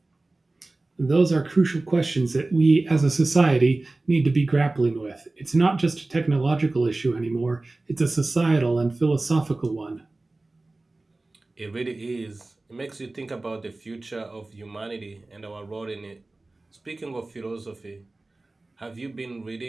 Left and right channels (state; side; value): quieter; left; 3.0 dB